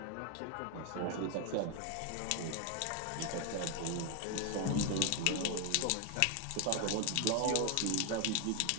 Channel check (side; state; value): both; different; correlation 0.01